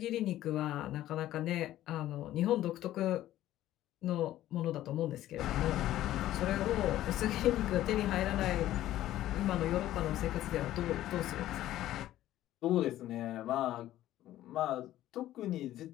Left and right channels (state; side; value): quieter; right; 13.8 dB